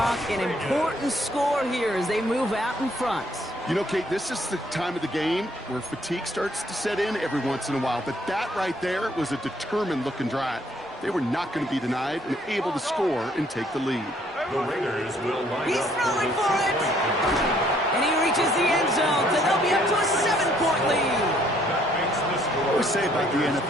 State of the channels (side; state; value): both; normal; correlation 0.65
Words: an important score here as they move out in front. You know, Kate, this is the time of the game where fatigue starts to set in every once in a while, but that right there was a determined-looking drive. They were not going to be denied and able to score and take the lead. The Raiders will line He's up throwing for it. And he reaches the end zone, so they'll be up to a 7-point lead. I always say about the